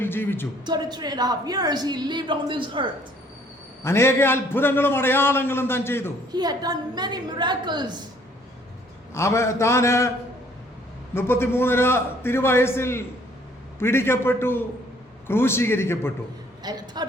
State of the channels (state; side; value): normal; both; correlation 0.61